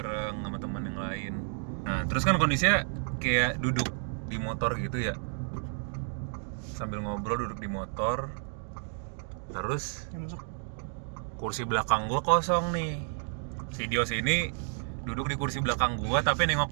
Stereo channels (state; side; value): silent; left; 57 dB below the other